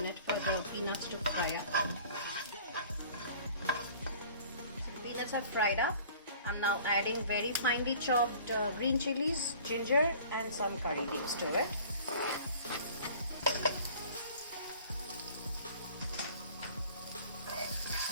for the peanuts to fry up. So the peanuts are fried up. I'm now adding very finely chopped green chilies, ginger and some curry leaves to it.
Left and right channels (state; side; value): inverted; both; correlation -0.48